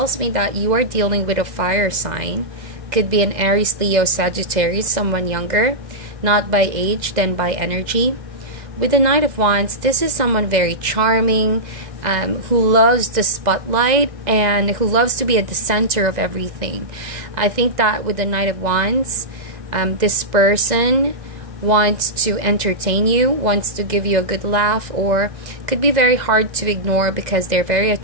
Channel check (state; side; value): late; left; 2.0 ms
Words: me that you are dealing with a fire sign. Could be an Aries, Leo, Sagittarius, someone younger, not by age, then by energy. With the Knight of Wands, this is someone very charming, who loves the spotlight and who loves to be at the center of everything. I think that with the Knight of Wands, this person wants to entertain you, wants to give you a good laugh, or could be very hard to ignore because they're very